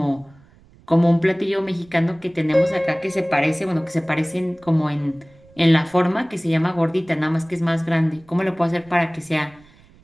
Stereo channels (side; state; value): right; noise; rumble, 28 dB below the sound